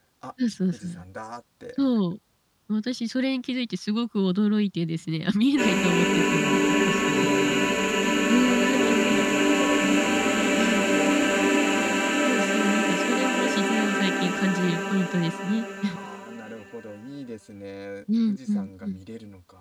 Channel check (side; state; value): both; identical; correlation 1.00